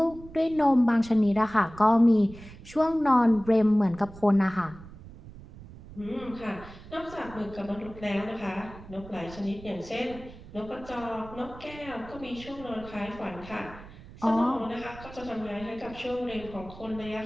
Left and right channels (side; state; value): right; noise; rumble, 17 dB below the sound